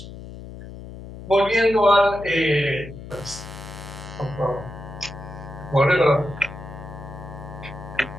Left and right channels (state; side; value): noise; left; hum, 13 dB below the sound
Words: Volviendo al... por favor. Bueno,